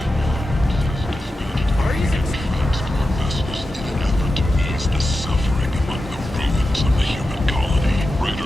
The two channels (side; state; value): both; normal; correlation 0.91